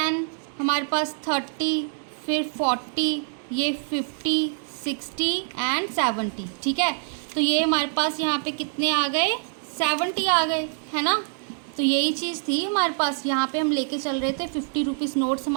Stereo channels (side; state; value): left; silent; 62 dB below the other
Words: हमारे पास 30, फिर 40, ये 50 60 एंड 70, ठीक है। तो ये हमारे पास यहाँ पे कितने आ गए 70 आ गए, है ना। तो यही चीज़ थी हमारे पास, यहाँ पे हम लेके चल रहे थे 50 रुपीज़ नोट्स